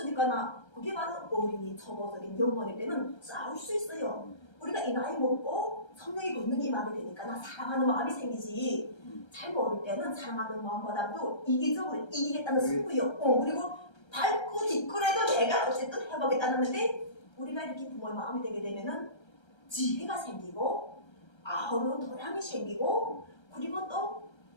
그게 바로 어린이 초보적인 영혼일 때는 싸울 수 있어요. 우리가 이 나이 먹고 성령이 걷는 임하게 되니까 나 사랑하는 마음이 생기지. 잘 모를 때는 사랑하는 마음보다도 이기적으로 이기겠다는 승부요. 그리고 밟고 뒷골에도 내가 어쨌든 해보겠다는데 우리가 이렇게 부모의 마음이 되게 되면은 지혜가 생기고 아우른 도량이 생기고 그리고 또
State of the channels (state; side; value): late; right; 1.3 ms